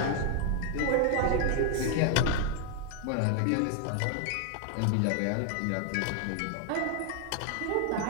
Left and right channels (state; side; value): different; both; correlation 0.00